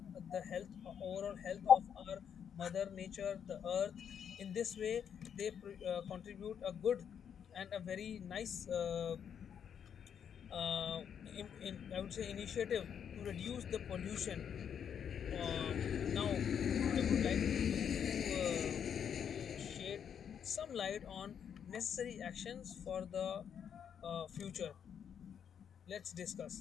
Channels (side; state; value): right; quieter; 8.1 dB